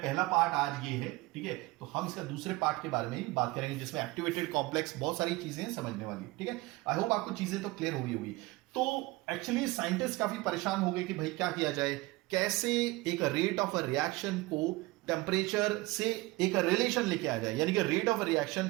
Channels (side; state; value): left; quieter; 21.3 dB